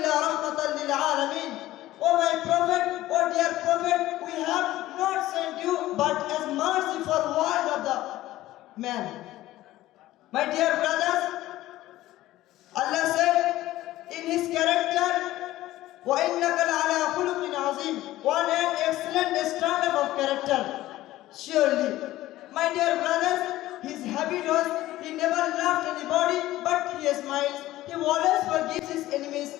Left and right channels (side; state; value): right; quieter; 15.7 dB